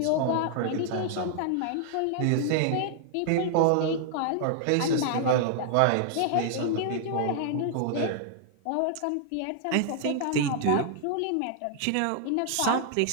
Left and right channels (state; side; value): different; both; correlation -0.01